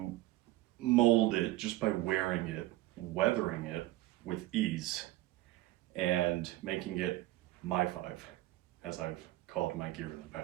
mold it just by wearing it, weathering it with ease, and making it my five, as I've called my gear in the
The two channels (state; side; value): quieter; left; 16.8 dB